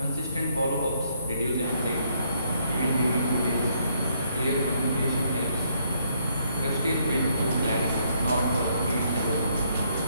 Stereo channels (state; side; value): inverted; both; correlation -0.71